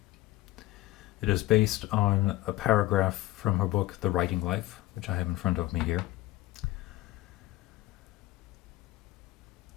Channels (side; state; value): right; quieter; 17.2 dB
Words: It is based on a paragraph from her book, The Writing Life, which I have in front of me here.